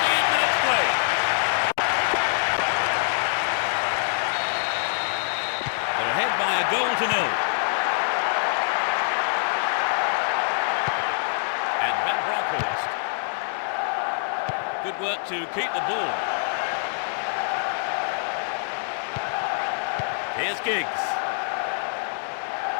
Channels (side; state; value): right; silent; digital silence